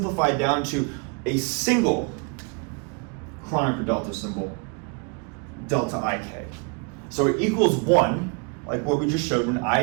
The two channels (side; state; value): left; quieter; 33.5 dB